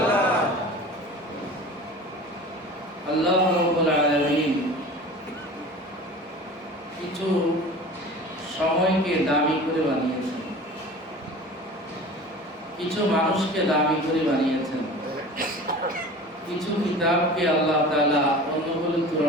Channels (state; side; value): normal; both; correlation 0.38